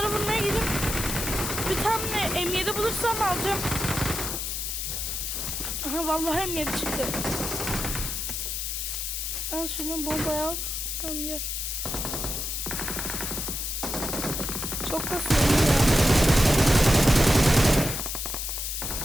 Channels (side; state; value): left; noise; hiss, 3 dB below the sound